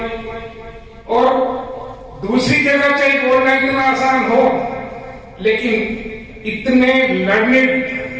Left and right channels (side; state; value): both; identical; correlation 1.00